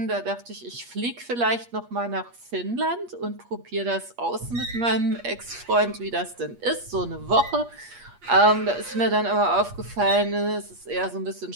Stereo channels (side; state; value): left; late; 8.4 ms